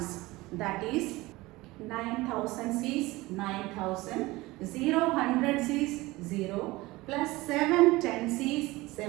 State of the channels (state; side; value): quieter; left; 20.4 dB